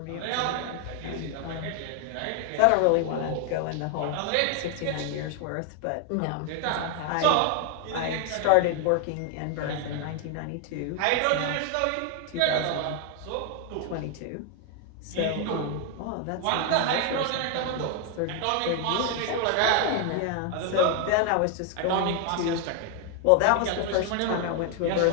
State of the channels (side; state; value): both; different; correlation 0.00